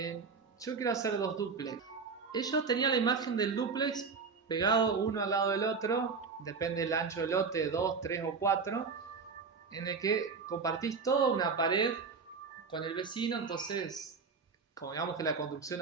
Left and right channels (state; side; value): quieter; left; 5.0 dB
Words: quiero hacer dos duplex. Ellos tenían la imagen del duplex pegado uno al lado del otro, depende del ancho del lote, 2, 3 o 4, en el que compartís toda una pared con el vecino. Entonces, como digamos que la construcción